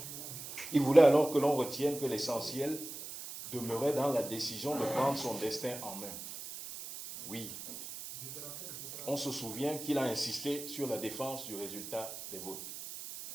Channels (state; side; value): noise; right; hiss, 10 dB below the sound